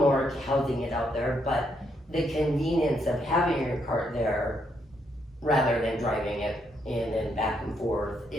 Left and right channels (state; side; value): normal; both; correlation 0.76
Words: housing it out there, but the convenience of having your cart there rather than driving it in and back and forth